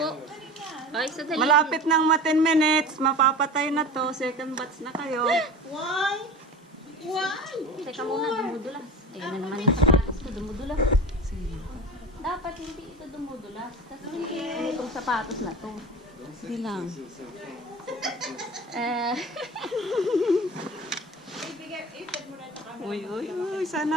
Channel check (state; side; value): normal; both; correlation 0.33